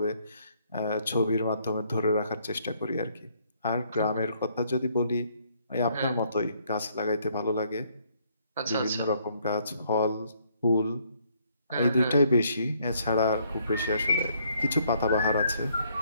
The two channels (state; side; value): inverted; both; correlation -0.68